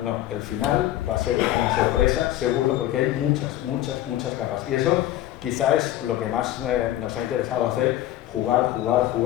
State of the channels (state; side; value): quieter; right; 13.7 dB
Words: No, el final va a ser una sorpresa, seguro, porque hay muchas capas. Y eso quizá es lo que más nos ha interesado hacer, jugar.